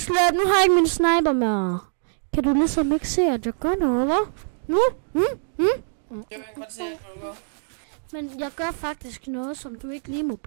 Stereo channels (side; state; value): left; silent; digital silence